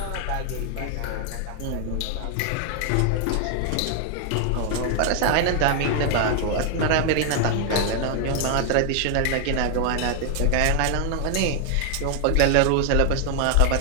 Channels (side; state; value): both; different; correlation 0.00